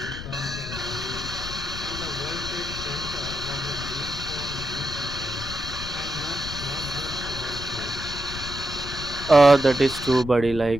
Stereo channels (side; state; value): left; noise; rumble, 9 dB below the sound